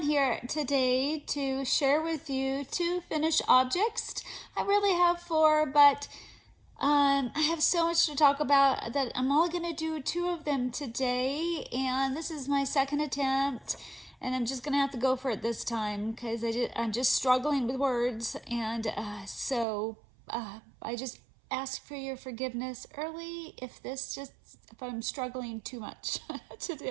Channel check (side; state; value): left; drops out; at 19.7 s